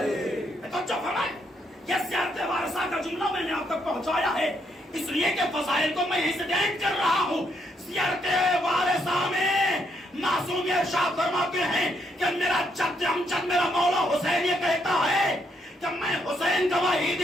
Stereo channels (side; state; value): both; normal; correlation 0.75